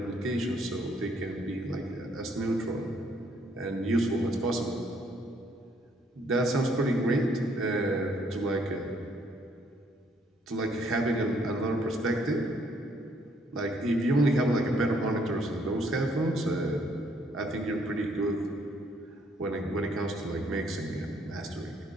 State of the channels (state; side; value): normal; both; correlation 0.67